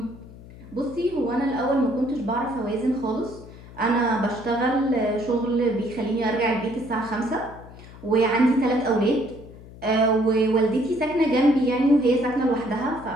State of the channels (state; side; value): noise; left; hum, 18 dB below the sound